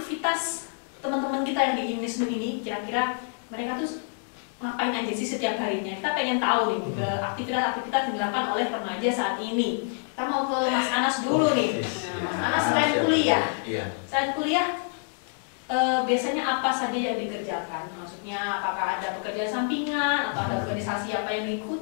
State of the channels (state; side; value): silent; right; 59 dB below the other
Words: teman-teman kita yang di INISNU ini. Kira-kira mereka tuh ngapain aja sih setiap harinya? Kita pengen tahu nih aktivitas-aktivitas yang dilakukan oleh remaja saat ini. Kita mau ke Mas Anas dulu nih. Mas Anas selain kuliah, selain kuliah biasanya apa saja yang dikerjakan? Maksudnya apakah ada pekerjaan sampingan atau ada organisasi apa yang